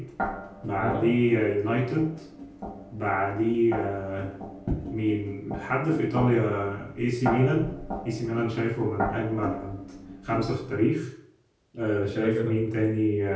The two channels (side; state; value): both; identical; correlation 1.00